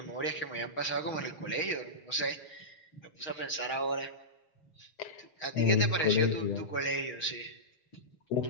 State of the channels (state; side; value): late; right; 6.3 ms